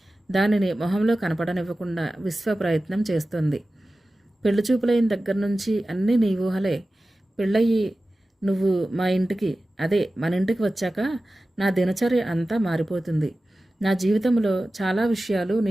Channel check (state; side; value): normal; both; correlation 0.95